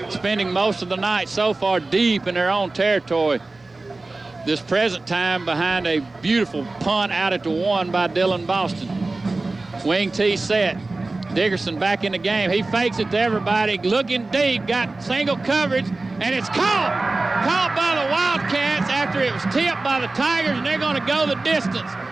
spending most of the night so far deep in their own territory. This present time behind a beautiful punt out at the 1 by Dylan Boston. Wing T set. Dickerson back in the game. He fakes it to everybody, looking deep, got single coverage, and it's caught. Caught by the Wildcats after it was tipped by the Tigers, and they're going to go the distance.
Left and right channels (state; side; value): quieter; left; 3.3 dB